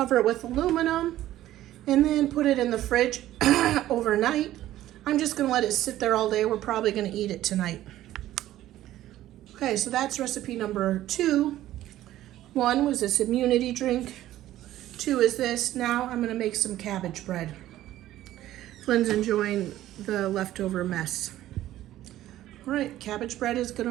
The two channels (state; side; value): quieter; left; 14.0 dB